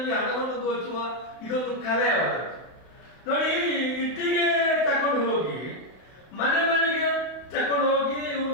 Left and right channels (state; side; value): late; right; 31 ms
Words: ಹಣವನ್ನು ದೋಚುವ ಇದೊಂದು ಕಲೆ ಅವರದ್ದು. ನೋಡಿ, ಇಟ್ಟಿಗೆ ತಕೊಂಡು ಹೋಗಿ ಮನೆ ಮನೆಗೆ ತಕೊಂಡು ಹೋಗಿ